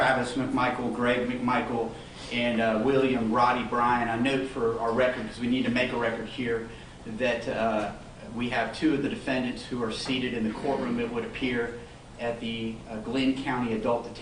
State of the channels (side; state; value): both; identical; correlation 1.00